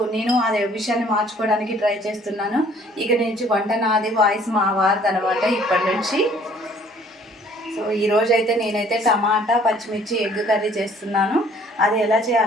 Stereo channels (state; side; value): normal; both; correlation 0.57